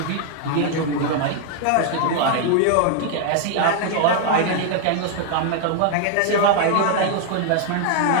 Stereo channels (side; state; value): both; different; correlation 0.00